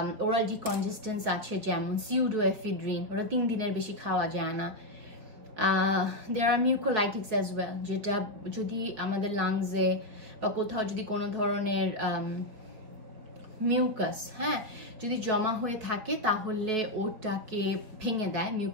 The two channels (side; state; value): left; late; 4.8 ms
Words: ওরাল ডিকনজেস্টেন্স আছে যেমন সিউডোএফিড্রিন, ওরা 3 দিনের বেশি খাওয়া যায় না। দেয়ার আর মিউকোলাইটিক্স অ্যাজ ওয়েল, যেটা যদি আমাদের লাংসে বা কোথাও যদি কোনো ধরনের মিউকাস যদি জমা হয়ে থাকে তাহলে ওটাকে ভেঙে দেয়